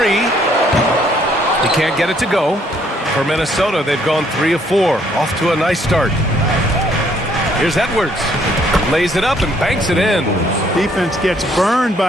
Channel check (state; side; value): normal; both; correlation 0.66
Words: He can't get it to go. For Minnesota, they've gone 3 of 4. Off to a nice start. Here's Edwards. Lays it up and banks it in. Defense gets burned